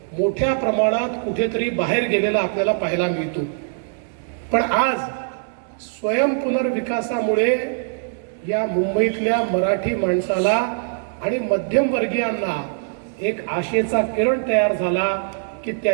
मोठ्या प्रमाणात कुठेतरी बाहेर गेलेला आपल्याला पाहायला मिळतो. पण आज स्वयं पुनर्विकासामुळे या मुंबईतल्या मराठी माणसाला आणि मध्यमवर्गीयांना एक आशेचा किरण तयार झाला की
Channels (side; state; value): left; silent; digital silence